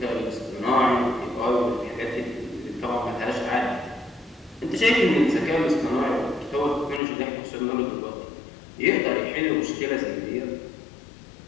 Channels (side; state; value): right; drops out; at 7.0 s